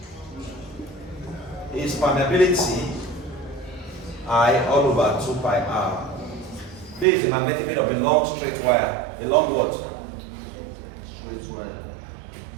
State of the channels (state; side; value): drops out; left; at 7.1 s